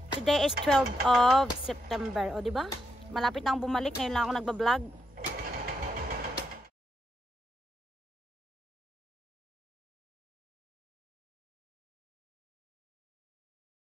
Today is 12 of September. O diba? Malapit na akong bumalik. Ngayon lang ako nagbablog.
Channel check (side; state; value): both; normal; correlation 0.81